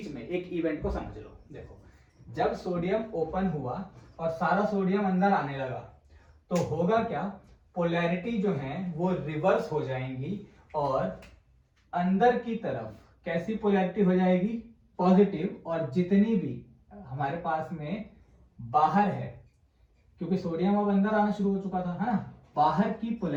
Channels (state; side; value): identical; both; correlation 1.00